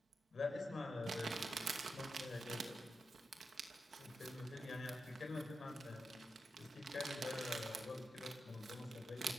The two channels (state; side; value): normal; both; correlation 0.88